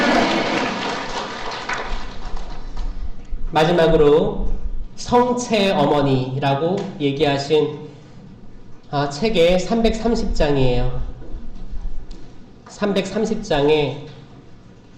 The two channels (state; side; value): identical; both; correlation 1.00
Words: 마지막으로 성체 어머니라고 얘기하신 책의 330장이에요. 330장에